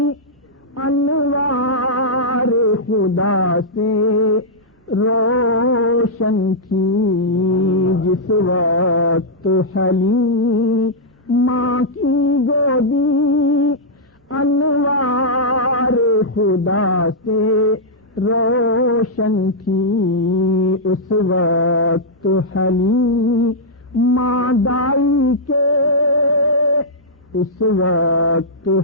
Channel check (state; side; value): normal; both; correlation -0.08